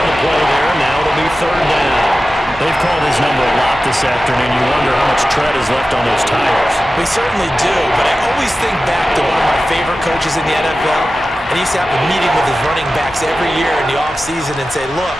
the play there. Now it'll be 3rd down. They've called his number a lot this afternoon. You wonder how much tread is left on those tires. We certainly do, but I always think back to one of my favorite coaches in the NFL. And he used to have a meeting with his running backs every year in the offseason and say, look,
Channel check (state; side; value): normal; both; correlation 0.94